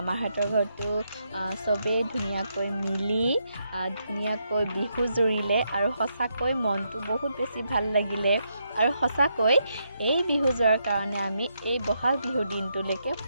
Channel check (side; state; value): both; inverted; correlation -0.80